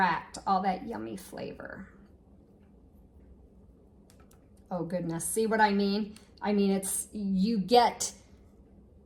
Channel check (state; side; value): identical; both; correlation 1.00